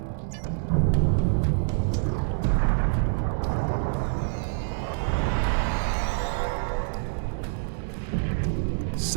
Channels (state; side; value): silent; left; digital silence